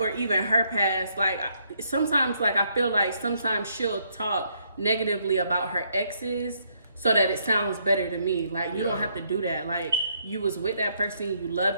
even her past. Like, sometimes, like, I feel like sometimes she'll talk negatively about her exes so that it sounds better to me. Like, you don't have to do that. Like, you was with that person, you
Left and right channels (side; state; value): both; inverted; correlation -0.72